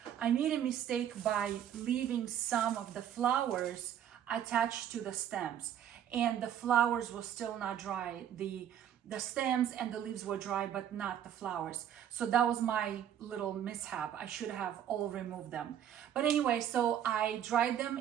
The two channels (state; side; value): quieter; left; 10.0 dB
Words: I made a mistake by leaving some of the flowers attached to the stems, and the flowers were still not dry. The stems and the leaves were dry, but not the flowers. So that was my little mishap. I should have all removed them. But anyway, so I dried them